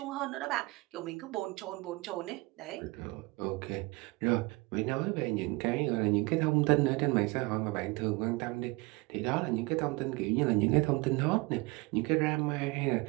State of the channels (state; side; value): quieter; left; 24.1 dB